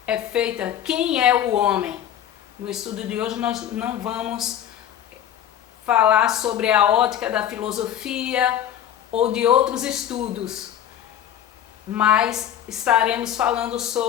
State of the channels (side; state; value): right; quieter; 10.5 dB